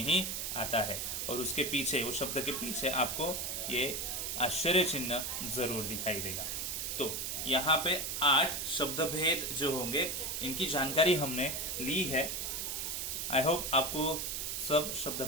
ही आता है और उसके पीछे, उस शब्द के पीछे आपको ये आश्चर्य चिन्ह जरूर दिखाई देगा। तो यहाँ पे 8 शब्द भेद जो होंगे इनकी जानकारी हमने ली है। आई होप आपको सब शब्द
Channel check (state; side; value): noise; right; hiss, 2 dB below the sound